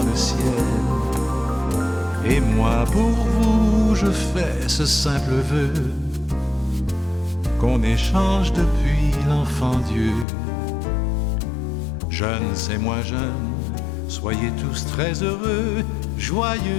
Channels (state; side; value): drops out; right; at 10.2 s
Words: le ciel. Et moi pour vous je fais ce simple vœu, qu'on échange depuis l'enfant Dieu. Jeunes et moins jeunes, soyez tous très heureux,